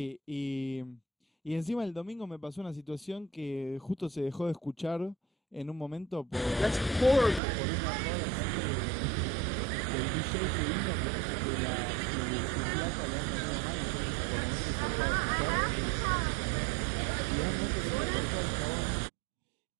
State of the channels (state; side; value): drops out; left; at 7.4 s